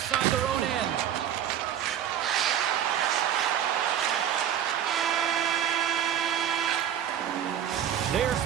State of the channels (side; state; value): left; quieter; 10.0 dB